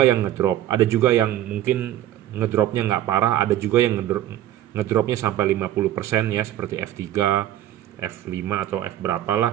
yang ngedrop, ada juga yang mungkin ngedropnya nggak parah, ada juga yang ngedropnya sampai 50% ya, seperti F3, F5 atau F berapa lah,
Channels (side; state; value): left; quieter; 12.8 dB